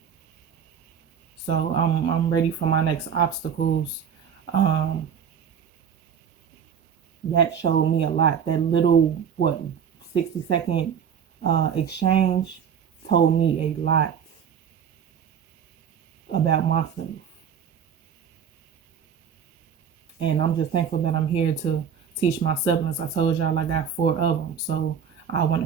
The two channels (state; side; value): quieter; left; 7.7 dB